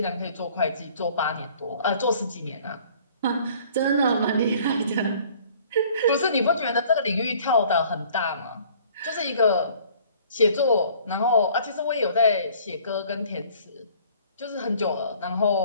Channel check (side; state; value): both; inverted; correlation -0.54